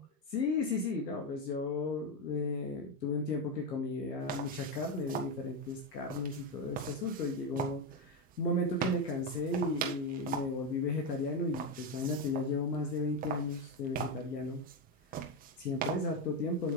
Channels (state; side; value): normal; both; correlation 0.10